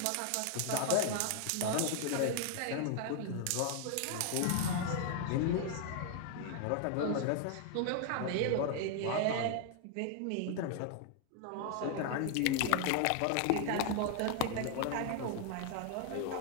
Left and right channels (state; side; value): different; both; correlation 0.00